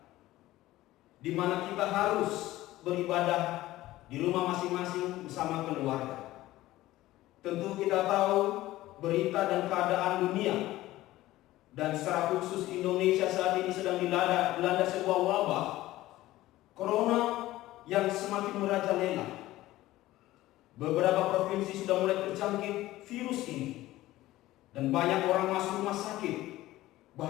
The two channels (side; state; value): right; quieter; 16.3 dB